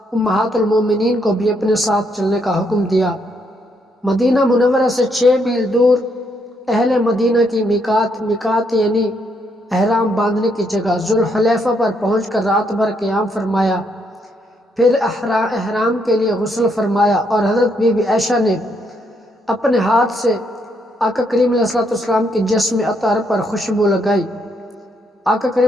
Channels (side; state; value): both; normal; correlation 0.75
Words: امہات المومنین کو بھی اپنے ساتھ چلنے کا حکم دیا۔ مدینہ منورہ سے 6 میل دور اہل مدینہ کی میقات یعنی احرام باندھنے کی جگہ ذوالحلیفہ پر پہنچ کر رات بھر قیام فرمایا، پھر احرام کے لیے غسل فرمایا اور حضرت بی بی عائشہ نے اپنے ہاتھ سے آقا کریم علیہ السلام کے جسم اطہر پر خوشبو لگائی۔ آقا